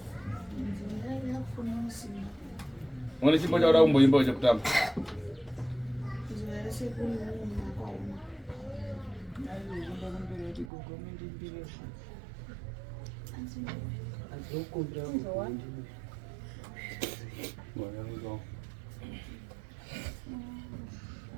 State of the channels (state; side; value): drops out; left; at 10.7 s